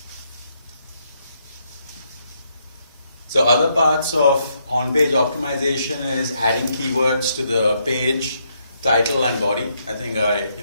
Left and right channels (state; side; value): inverted; both; correlation -0.75